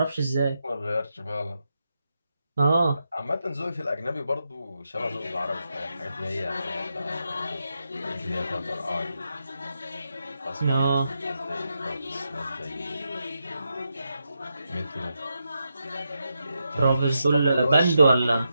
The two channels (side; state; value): both; inverted; correlation -0.85